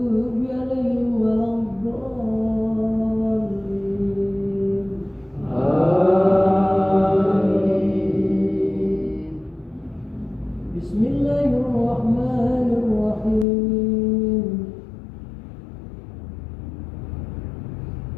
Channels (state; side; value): drops out; right; at 13.5 s